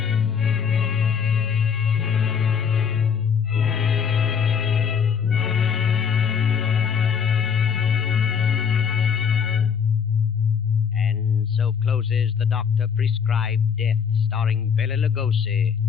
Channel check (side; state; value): right; quieter; 7.0 dB